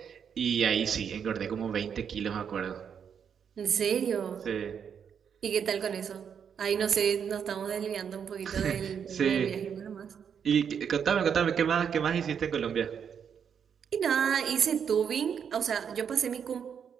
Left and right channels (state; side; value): quieter; left; 7.5 dB